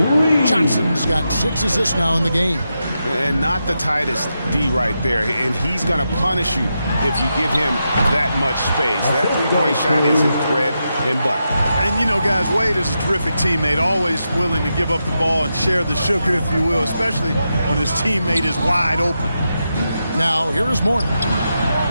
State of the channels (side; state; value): both; inverted; correlation -0.87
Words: Johnson's got 6 assists now in the game. And not the tightest D right there. And he's going to punish you if you give him that much space. That three-point shot is his bread and butter. And, you know, guys, Wade is a terrific teammate, always willing to give up the ball and share the sugar, if you will, especially when his teammate is wide open. Now, here is Morton.